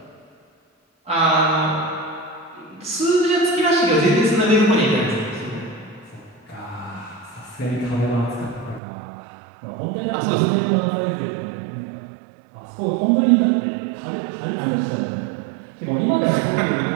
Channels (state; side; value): drops out; left; at 8.8 s